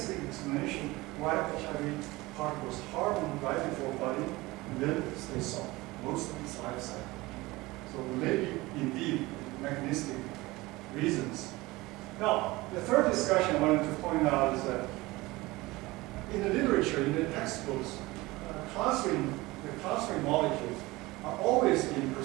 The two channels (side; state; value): left; quieter; 20.8 dB